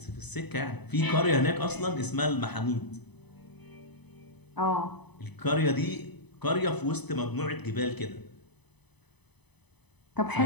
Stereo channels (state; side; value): late; right; 0.99 ms